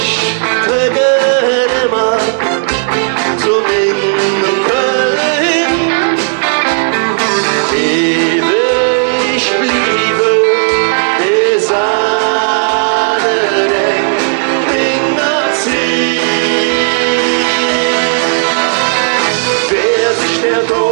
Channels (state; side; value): silent; left; digital silence